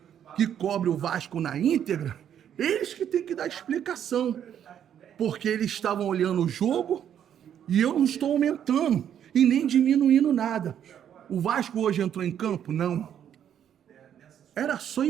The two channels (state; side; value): quieter; left; 9.5 dB